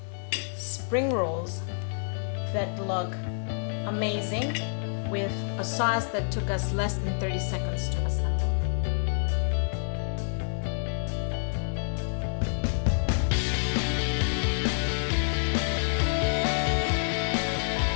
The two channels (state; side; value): silent; right; digital silence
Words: spring rolls that look amazing with a sauce that took us less than 30 seconds to assemble.